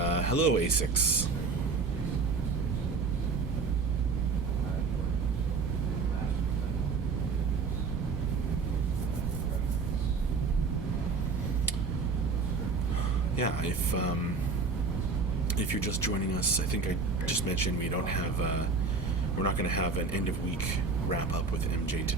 hello, A6. Yeah, if you're just joining us, I think I just mentioned we're not going to have an end of week wrap up with MJ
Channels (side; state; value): left; quieter; 4.5 dB